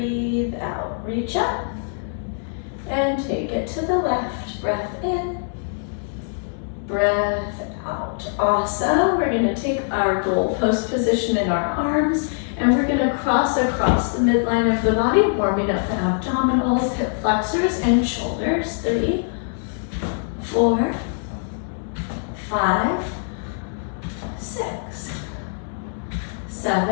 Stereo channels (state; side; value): silent; right; digital silence